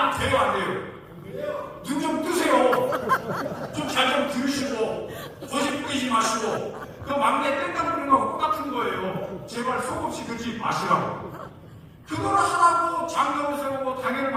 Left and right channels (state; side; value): identical; both; correlation 1.00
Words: 돼요, 안 돼요? 눈 좀 뜨세요. 좀 잘 좀 들으시고 거짓 뿌리지 마시고 그 막내 땡깡 부리는 거하고 똑같은 거예요. 제발 속없이 그러지 마시라고. 그걸 하라고 장로를 세우고 당회를